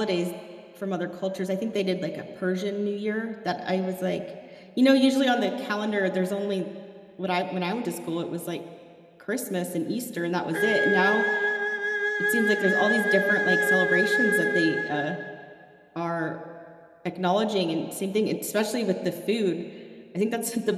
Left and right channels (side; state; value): both; identical; correlation 1.00